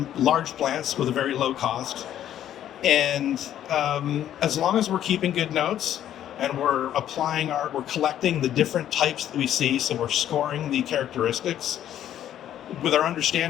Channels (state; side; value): quieter; right; 11.1 dB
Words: large plants with a very low cost. And as long as we're keeping good notes and we're collecting the different types that we see, so we're scoring the characteristics with our